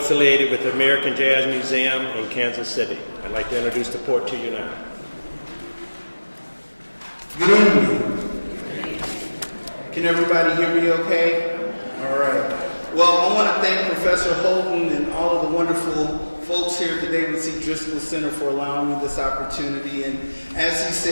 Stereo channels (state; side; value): inverted; both; correlation -1.00